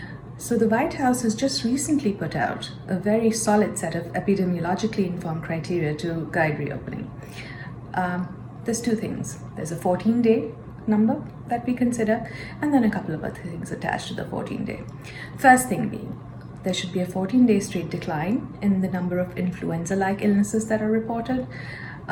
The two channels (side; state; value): both; identical; correlation 1.00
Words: So the White House has just recently put out a very solid set of epidemiologically informed criteria to guide reopening. There's two things. There's a 14-day number that we consider, and then a couple of other things attached to the 14-day. First thing being, there should be a 14-day straight decline in the number of influenza-like illnesses that are reported.